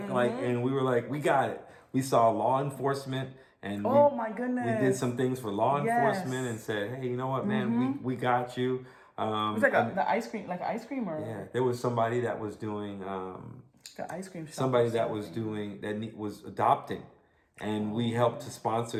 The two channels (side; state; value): both; identical; correlation 1.00